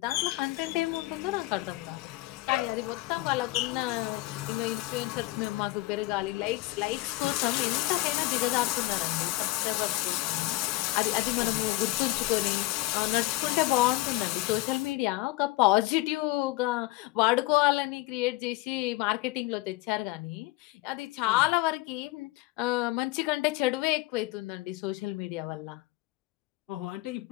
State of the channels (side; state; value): right; quieter; 19.0 dB